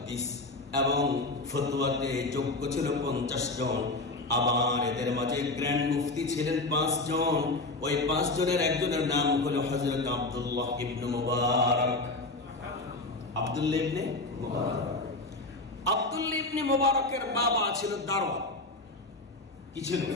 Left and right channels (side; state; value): right; quieter; 3.1 dB